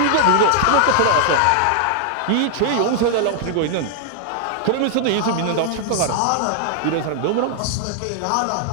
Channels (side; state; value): both; different; correlation -0.01